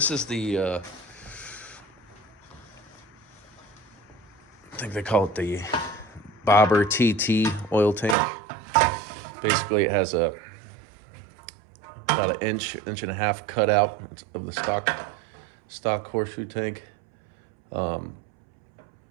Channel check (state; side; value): drops out; left; at 8.2 s